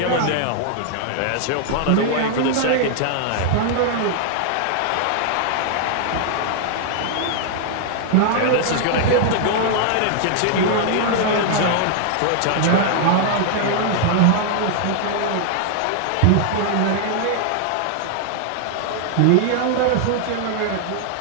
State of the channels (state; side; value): different; both; correlation 0.00